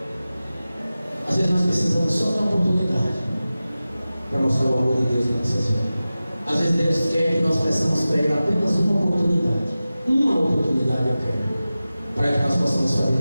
Às vezes nós precisamos só de uma oportunidade para mostrar o amor de Deus em nossas vidas. Às vezes Deus quer que nós peçamos para Ele apenas uma oportunidade. Uma oportunidade eu quero, para que nós possamos fazer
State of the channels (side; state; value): both; inverted; correlation -0.95